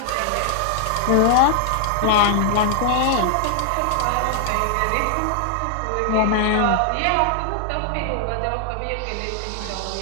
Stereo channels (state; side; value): different; both; correlation -0.01